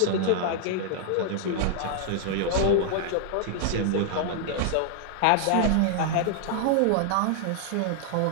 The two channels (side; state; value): both; different; correlation -0.01